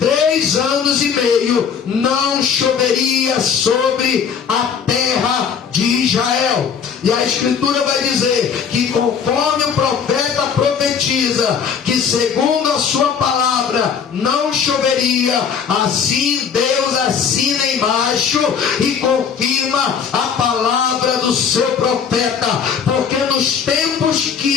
anos e meio não choveria sobre a terra de Israel. E a Escritura vai dizer que conforme o profeta profetiza que segundo a sua palavra não choveria, assim Deus assina embaixo e confirma a palavra do seu profeta, porque nos tempos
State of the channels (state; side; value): quieter; right; 6.9 dB